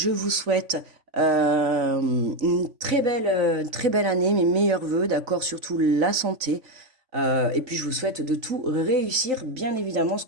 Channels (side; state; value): left; late; 3.5 ms